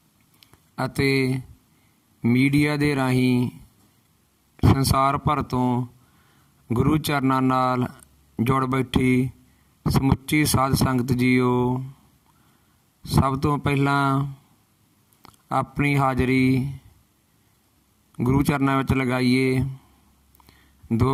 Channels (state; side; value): identical; both; correlation 1.00